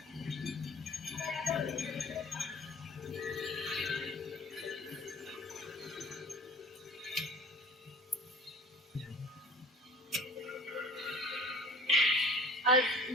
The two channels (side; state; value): both; normal; correlation 0.45